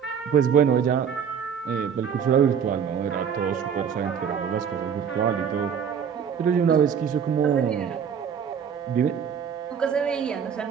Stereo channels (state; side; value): quieter; left; 7.5 dB